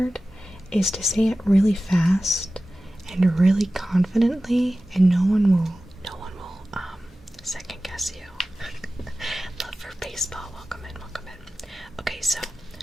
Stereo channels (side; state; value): both; normal; correlation 0.96